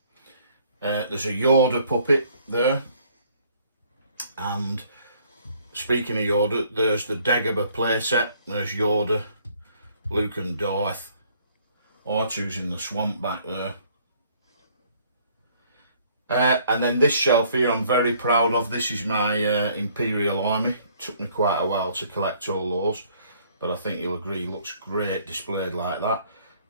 There's a Yoda puppet there, and speaking of Yoda, there's the Dagobah playset. There's Yoda, Luke and Darth. R2's in the swamp back there. And then this shelf here I'm very proud of. This is my Imperial Army. Took me quite a while to collect all those, but I think you'll agree looks great displayed like that.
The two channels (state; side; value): inverted; both; correlation -0.61